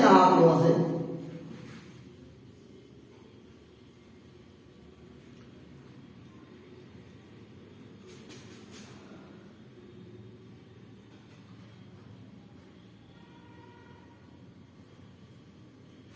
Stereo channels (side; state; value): both; identical; correlation 1.00